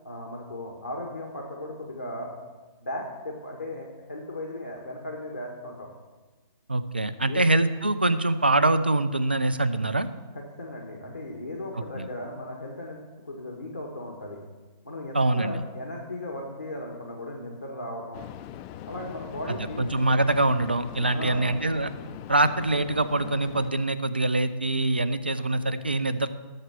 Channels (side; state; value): both; inverted; correlation -0.70